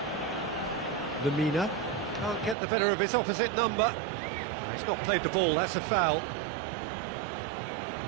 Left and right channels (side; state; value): left; drops out; at 2.6 s